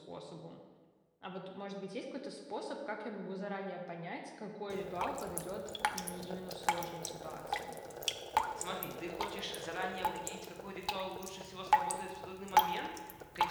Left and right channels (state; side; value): identical; both; correlation 1.00